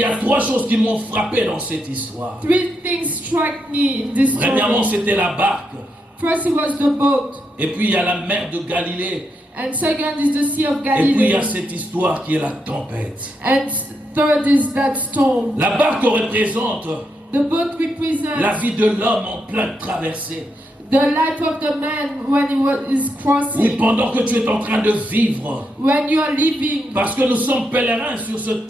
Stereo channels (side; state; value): both; normal; correlation 0.82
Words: a trois choses qui m'ont frappé dans cette histoire. Three things struck me in this Premièrement, story. c'était la barque. First, it was the boat, Et puis, il y a la mer de Galilée. and second is the Sea of Et puis, il y Galilee, a cette histoire qui est la tempête. and third is that storm. La barque représente The boat represents la vie de l'homme en pleine traversée. the life of the man when is Oui, crossing, pendant que tu es en train de vivre. when you are living, Parce que nous sommes pèlerins sur cette